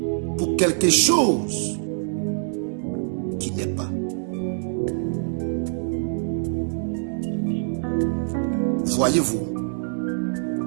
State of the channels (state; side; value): silent; left; 62 dB below the other